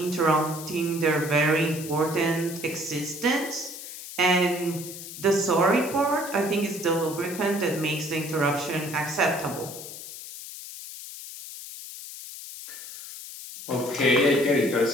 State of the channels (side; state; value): left; noise; hiss, 12 dB below the sound